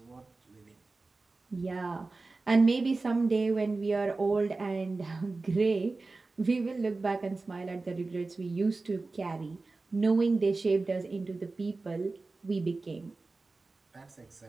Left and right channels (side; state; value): left; quieter; 3.6 dB